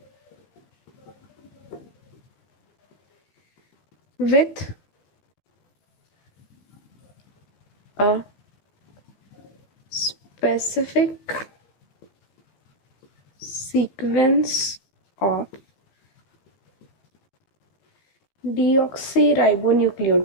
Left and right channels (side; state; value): right; late; 15 ms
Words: with a specific sequence of